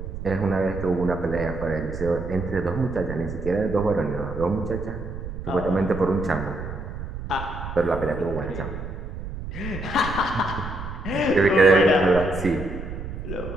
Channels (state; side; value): noise; right; rumble, 8 dB below the sound